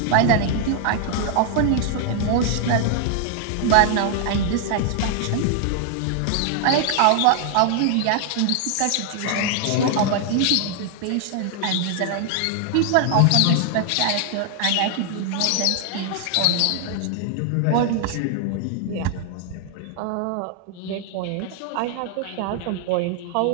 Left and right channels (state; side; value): different; both; correlation 0.00